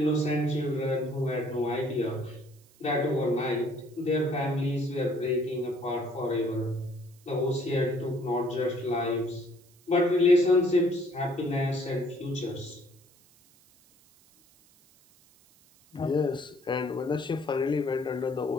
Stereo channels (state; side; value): noise; right; hiss, 29 dB below the sound